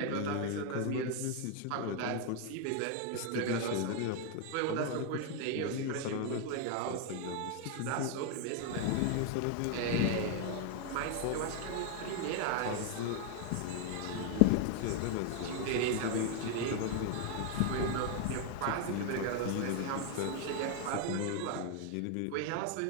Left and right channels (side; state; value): both; different; correlation 0.01